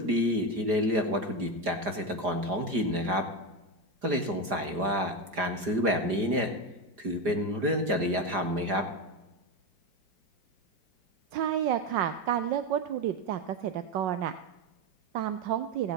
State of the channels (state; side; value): late; left; 4.9 ms